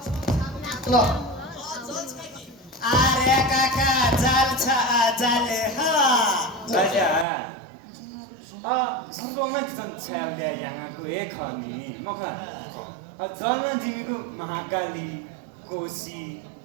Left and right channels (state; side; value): drops out; left; at 7.2 s